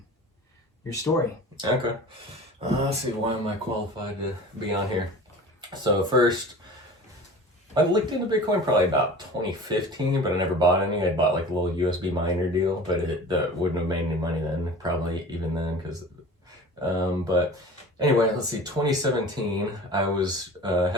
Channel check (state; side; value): normal; both; correlation 0.39